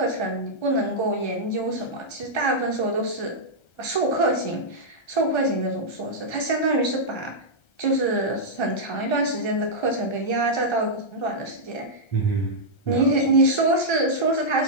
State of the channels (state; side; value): late; right; 1.3 ms